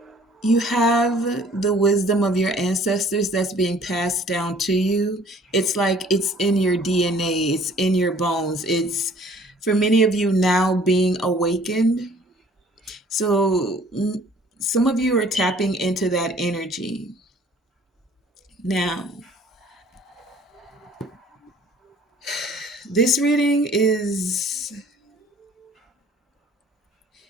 you have the wisdom of your ancestors that's being passed down to you. It's like it's in your DNA, it's in your bones. It's for many of you now being awakened. So some of you are tapping into that energy now. This reading is,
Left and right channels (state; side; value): normal; both; correlation 0.55